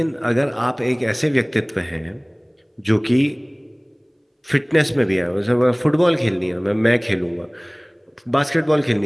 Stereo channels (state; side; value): identical; both; correlation 1.00